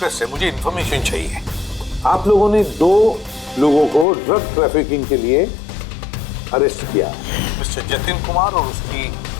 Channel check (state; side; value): drops out; right; at 4.0 s